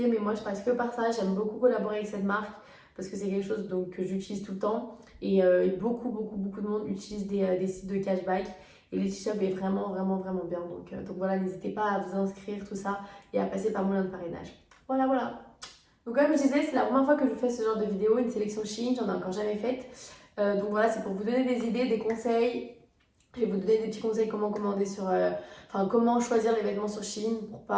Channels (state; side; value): identical; both; correlation 1.00